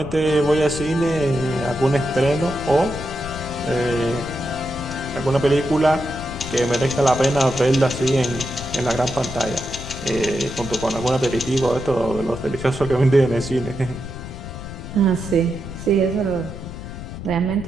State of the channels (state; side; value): noise; left; rumble, 10 dB below the sound